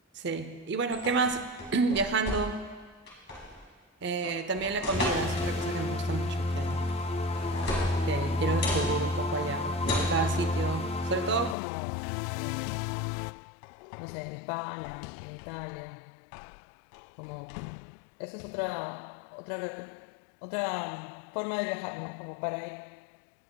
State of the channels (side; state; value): right; drops out; at 11.6 s